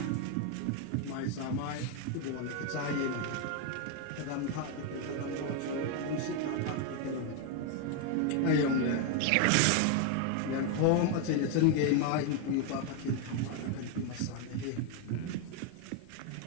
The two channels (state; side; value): different; both; correlation 0.01